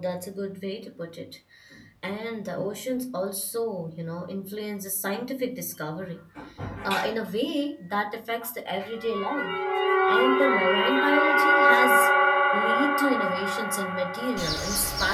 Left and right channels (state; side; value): identical; both; correlation 1.00